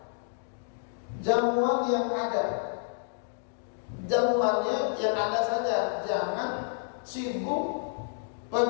Jamuan yang ada. Jamuannya yang ada saja. Jangan sibuk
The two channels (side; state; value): right; silent; digital silence